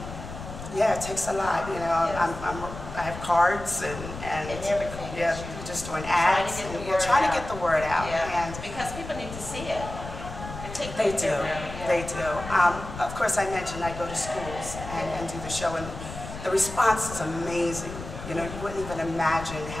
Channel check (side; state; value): left; noise; rumble, 10 dB below the sound